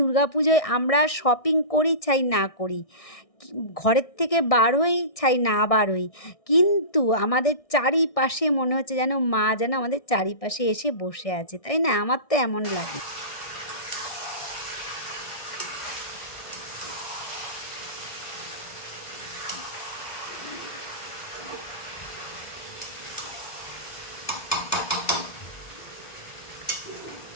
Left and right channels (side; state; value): right; late; 1.6 ms